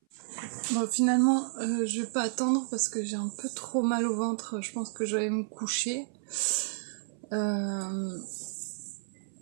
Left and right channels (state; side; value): silent; left; 57 dB below the other